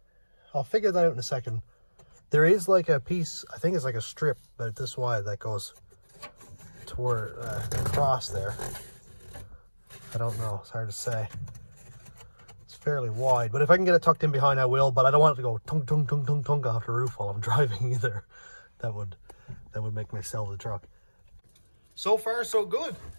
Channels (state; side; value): inverted; both; correlation -1.00